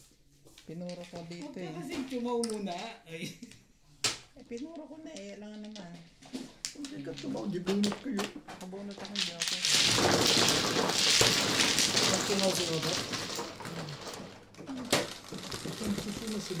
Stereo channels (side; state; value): both; identical; correlation 1.00